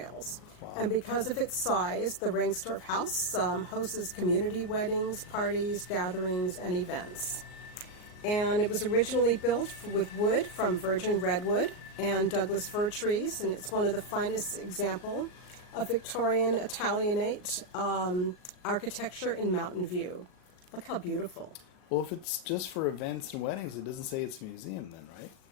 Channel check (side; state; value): right; late; 38 ms